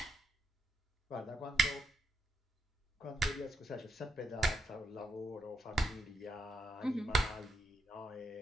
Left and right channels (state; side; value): normal; both; correlation 0.81